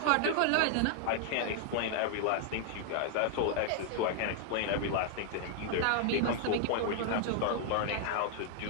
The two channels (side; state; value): both; different; correlation 0.00